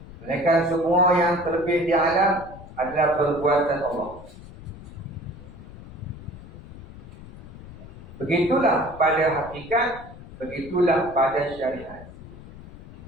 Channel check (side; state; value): left; noise; rumble, 16 dB below the sound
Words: melainkan semua yang terbit di alam adalah perbuatan Allah. Begitulah pada hakikat, begitulah pada syariat.